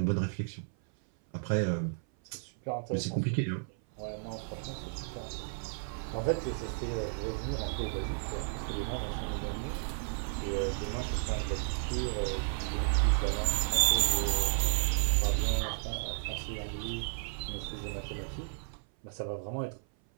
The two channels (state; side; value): silent; left; 56 dB below the other